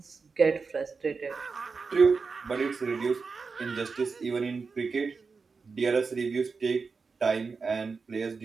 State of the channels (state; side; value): quieter; left; 4.8 dB